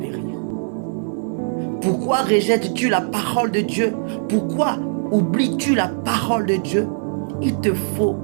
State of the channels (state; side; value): silent; left; digital silence